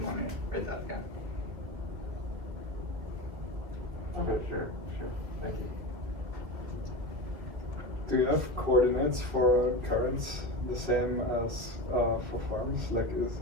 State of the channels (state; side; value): late; left; 2.1 ms